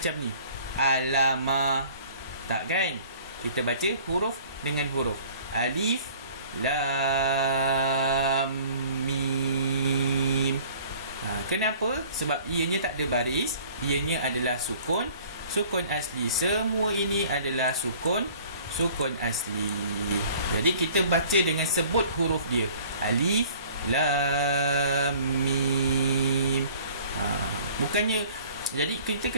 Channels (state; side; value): inverted; both; correlation -0.51